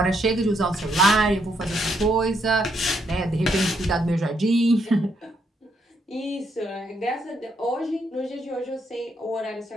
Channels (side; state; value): both; normal; correlation 0.76